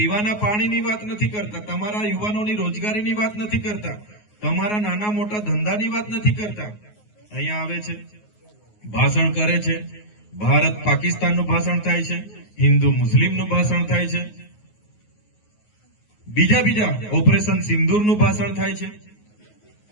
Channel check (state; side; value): late; right; 9.5 ms